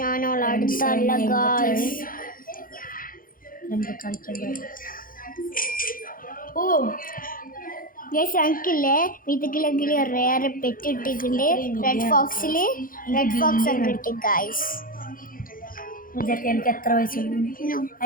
ഞാനോൾ അടുത്തല്ല ഗൈസ്. നമുക്ക് കളിക്കാൻ. ഗൈസ് എനിക്കില്ലേ ഇതിലെങ്കിൽ റേർ പെറ്റ് ഇട്ടിട്ടുണ്ട്. റെഡ് ഫോക്സ് ഒക്കെ കിട്ടി ഗൈസ്. ഇതൊക്കെ എനിക്ക് എത്ര വയസ്സുണ്ട്?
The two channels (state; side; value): late; right; 0.41 ms